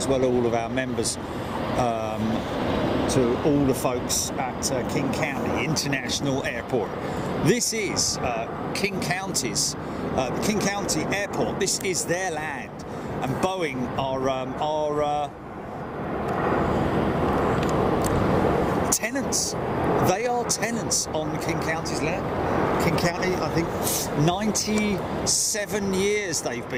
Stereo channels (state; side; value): identical; both; correlation 1.00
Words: well, all of our members, to all the folks at King County International Airport. This is King County's, King County Airport. This is their land, and Boeing are tenants. They are tenants on King County's land. King County, I think 97 years they've